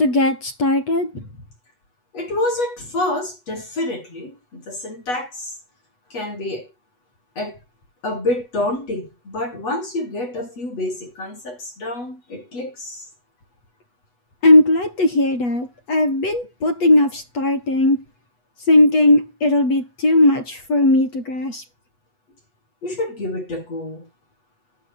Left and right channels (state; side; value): late; right; 8.2 ms